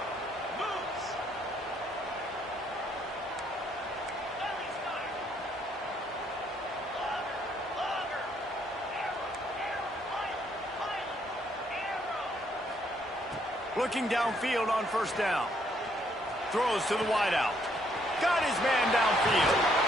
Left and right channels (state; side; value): normal; both; correlation 0.70